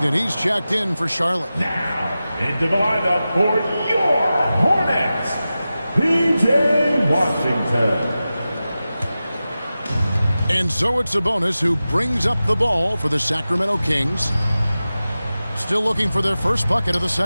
he's checked in for Charlotte. Now, into the lineup for your Hornets, P.J. Washington. And so it's Sabonis who brings up the ball for the Sacramento Kings. Still looking for their first bucket of the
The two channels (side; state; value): both; inverted; correlation -0.94